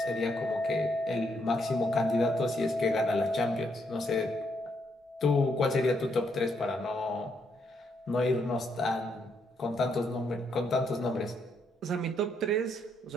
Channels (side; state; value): both; normal; correlation 0.76